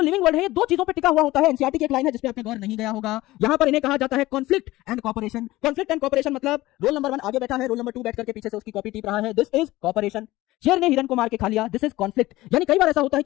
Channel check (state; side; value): quieter; right; 18.0 dB